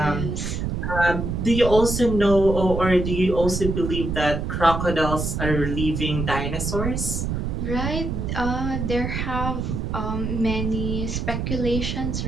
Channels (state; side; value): noise; right; rumble, 2 dB below the sound